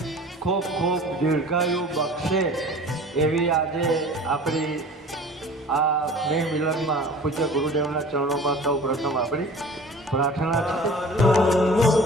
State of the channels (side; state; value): both; normal; correlation 0.43